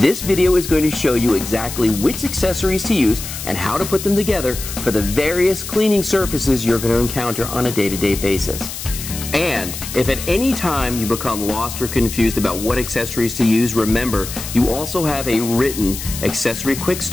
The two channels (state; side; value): noise; left; hiss, 8 dB below the sound